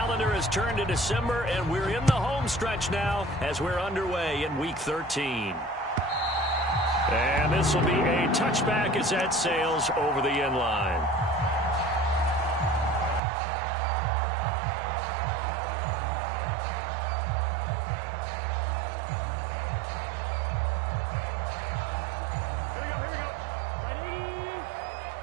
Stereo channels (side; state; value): left; drops out; at 13.2 s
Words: has turned to December, and we're in the home stretch now as we're underway in Week 13. And this will be a touchback as that sails over the end line. Here we go. Right 80.